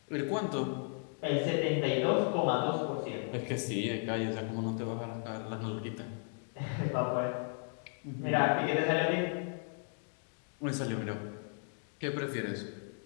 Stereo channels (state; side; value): silent; right; 54 dB below the other